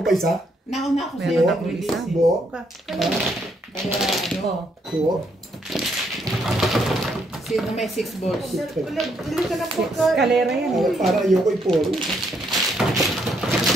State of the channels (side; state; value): both; normal; correlation 0.73